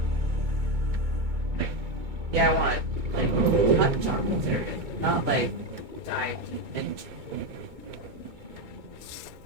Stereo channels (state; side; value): late; left; 2.2 ms